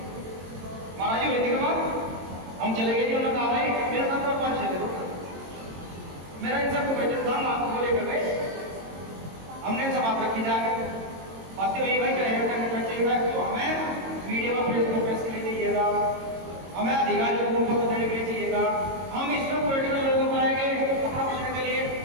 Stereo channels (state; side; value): late; left; 22 ms